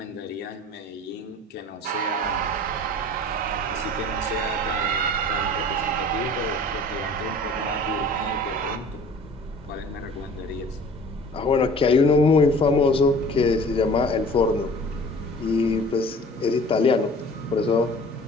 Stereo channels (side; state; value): both; normal; correlation 0.46